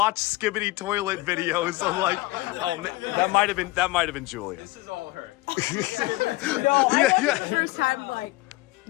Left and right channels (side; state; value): right; quieter; 20.0 dB